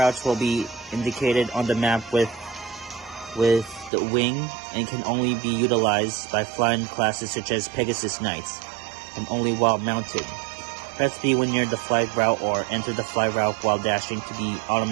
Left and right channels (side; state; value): left; drops out; at 3.9 s